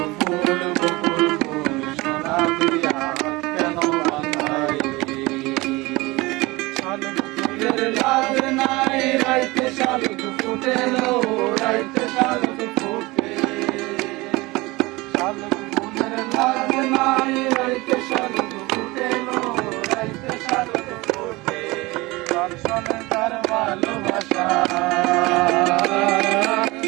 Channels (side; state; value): left; quieter; 22.2 dB